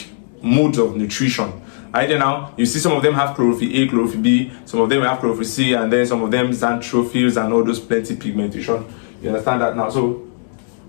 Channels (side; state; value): right; silent; digital silence